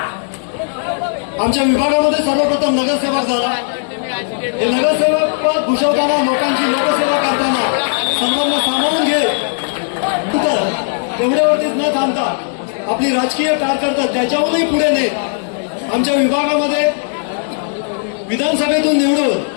आमच्या विभागामध्ये सर्वप्रथम नगरसेवक झाला. हे नगरसेवक पद भूषवताना लोकांची लोकसेवा करताना सर्वांना सामावून घे एवढ्यावरतीच न थांबता आपली राजकीय कारकीर्द त्याच्याहूनही पुढे नेत आमच्या विभागामध्ये विधानसभेतून निवडून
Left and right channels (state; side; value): silent; right; digital silence